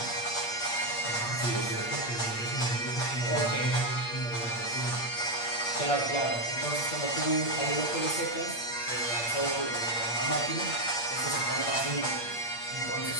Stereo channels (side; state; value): right; late; 8.5 ms